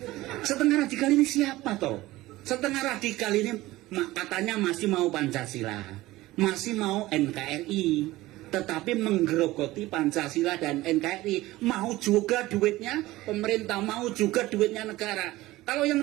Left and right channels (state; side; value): quieter; left; 17.9 dB